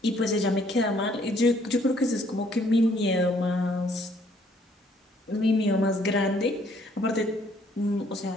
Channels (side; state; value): both; normal; correlation 0.64